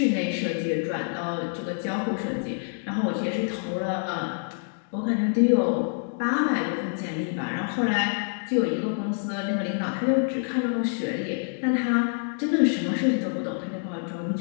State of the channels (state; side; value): silent; right; 60 dB below the other